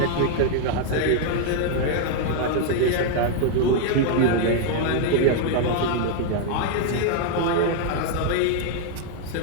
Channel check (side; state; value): both; different; correlation 0.00